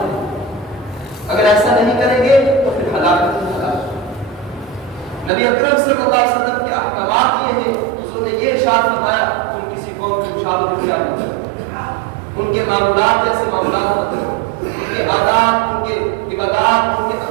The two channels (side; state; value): left; drops out; at 5.3 s